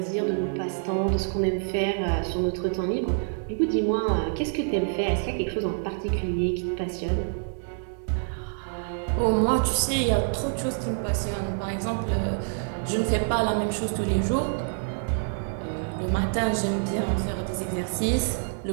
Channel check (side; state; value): left; silent; digital silence